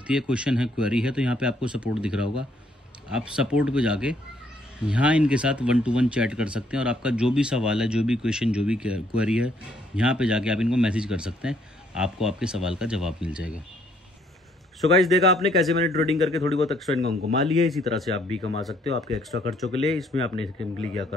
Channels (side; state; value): both; normal; correlation 0.67